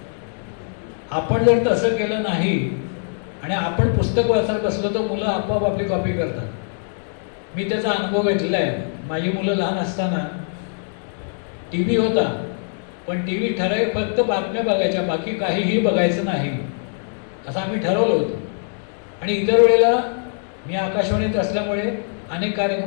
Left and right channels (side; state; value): right; silent; digital silence